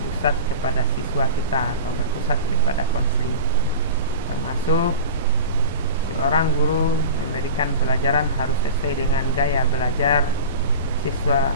kepada siswa kita atau berpusat kepada konseling, termasuk seorang guru memberikan pelajaran harus sesuai dengan gaya belajar siswa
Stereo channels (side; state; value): both; inverted; correlation -0.32